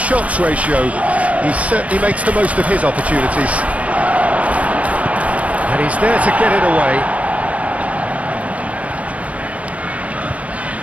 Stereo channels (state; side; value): late; left; 0.066 ms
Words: ratio. He certainly makes the most of his opportunities. And he's there to get it away.